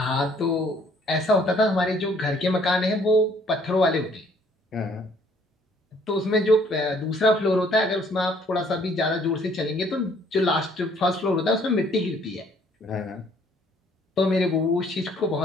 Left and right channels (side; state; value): both; normal; correlation 0.61